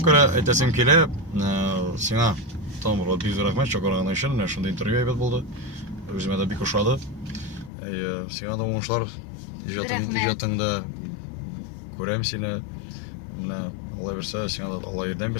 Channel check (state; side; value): drops out; right; at 7.7 s